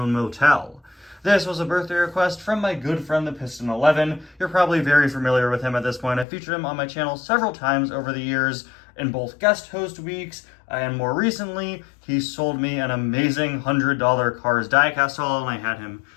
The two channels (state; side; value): drops out; right; at 6.2 s